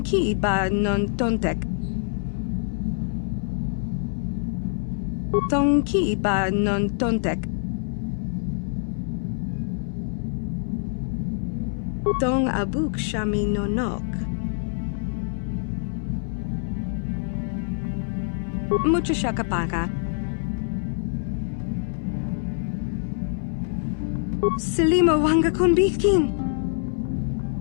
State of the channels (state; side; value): silent; right; 62 dB below the other